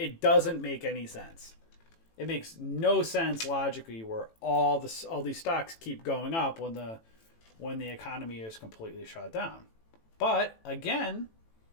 doesn't make any sense. It makes no sense logically where all these stocks keep going up when the economy is completely shut down. But again,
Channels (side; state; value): right; late; 18 ms